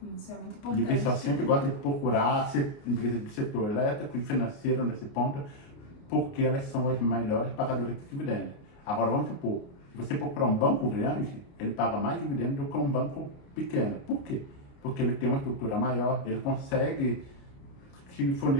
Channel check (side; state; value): right; late; 29 ms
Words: Isso é muito E importante. o pessoal sempre gosta de procurar empresas do setor elétrico e financeiro nesse ponto, porque elas são as melhores pagadoras de dividendos. Agora, vamos supor, se você procurar um banco grande, ele paga mais dividendos do que um banco pequeno. Por quê? Porque ele tem uma estrutura maior, ele consegue te